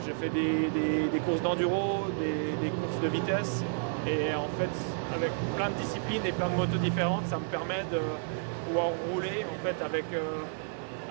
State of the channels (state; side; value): silent; left; 57 dB below the other